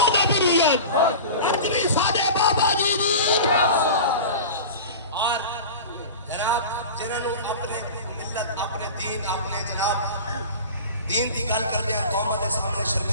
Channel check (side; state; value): both; inverted; correlation -0.33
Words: نبویت اپنی ساڈے بابا جی دی اور جناب جنہوں نے اپنے ملت اپنے دین اپنے جناب دین کی گل کرتے ہیں قوم کے سامنے